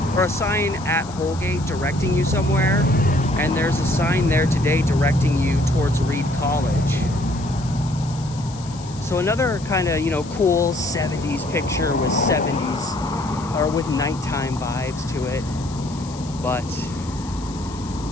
or a sign at Holgate directing you somewhere, and there's a sign there today directing you towards Reed College. So another kind of, you know, cool 70s picture with 70s, or with nighttime vibes to it. But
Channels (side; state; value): left; noise; hiss, 18 dB below the sound